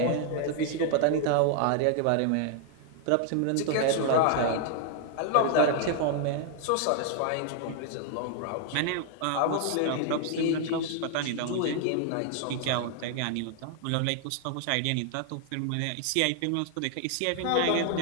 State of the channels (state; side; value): different; both; correlation 0.00